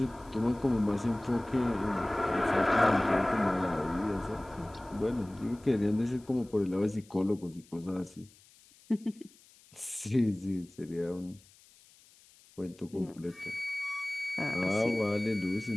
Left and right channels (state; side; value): noise; left; hiss, 27 dB below the sound